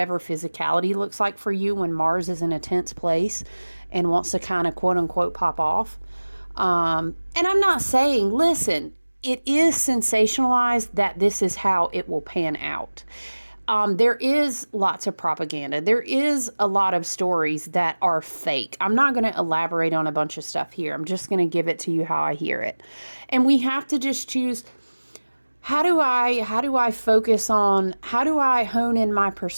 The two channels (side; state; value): both; inverted; correlation -1.00